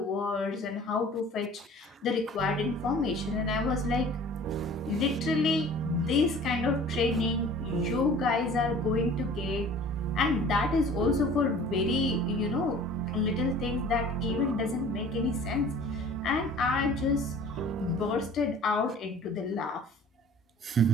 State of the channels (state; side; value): normal; both; correlation 0.46